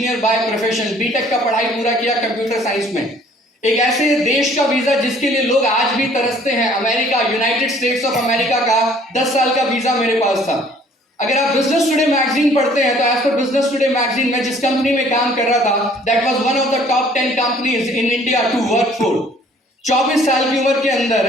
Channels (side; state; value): both; normal; correlation 0.57